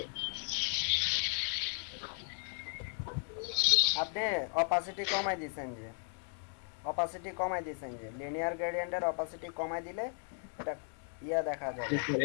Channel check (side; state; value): right; silent; 54 dB below the other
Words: আপনি অপাসিটি কমাই দিয়েছেন যে, অপাসিটি কমাই দিয়েছেন যে লিনিয়ার গ্রেডিয়েন্টের অপাসিটি কমাই দিলে এটা ইয়া দেখা যাবে।